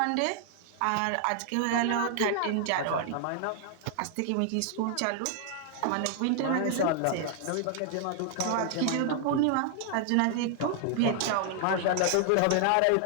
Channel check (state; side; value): different; both; correlation 0.00